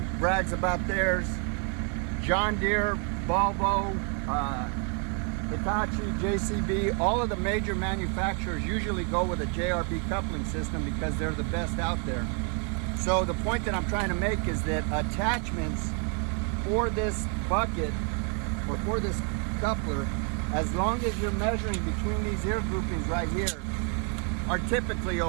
brags about theirs. John Deere, Volvo, Hitachi, JCB, all of the major manufacturers usually go with a JRB coupling system because they're the best out there. So the point that I'm trying to make is that attachments for this bucket or for this coupler, as long as you're measuring between these ear groupings right here, are typically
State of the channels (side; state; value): left; quieter; 39.1 dB